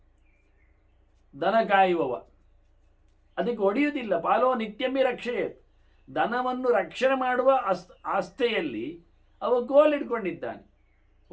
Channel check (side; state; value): both; identical; correlation 1.00